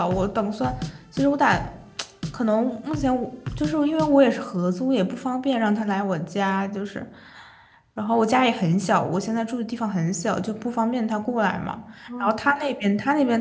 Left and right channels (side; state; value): both; identical; correlation 1.00